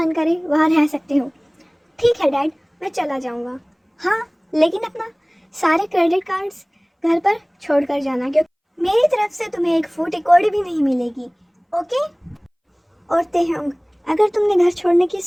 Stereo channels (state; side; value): identical; both; correlation 1.00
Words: करे वहाँ रह सकते हो। ठीक है डैड, मैं चला जाऊँगा। हाँ, लेकिन अपना सारे क्रेडिट कार्ड्स घर पर छोड़ कर जाना, क्योंकि मेरी तरफ से तुम्हें एक फूटी कौड़ी भी नहीं मिलेगी। ओके? और तेहंग, अगर तुमने घर छोड़ने की